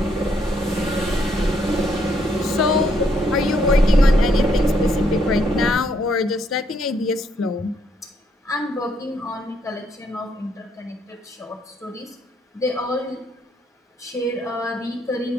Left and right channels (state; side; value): normal; both; correlation 0.72